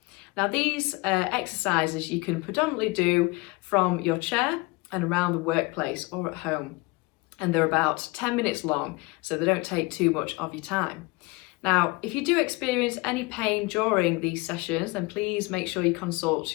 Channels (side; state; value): right; quieter; 25.1 dB